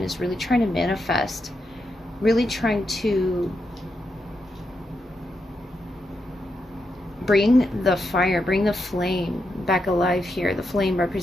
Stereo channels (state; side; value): normal; both; correlation 0.84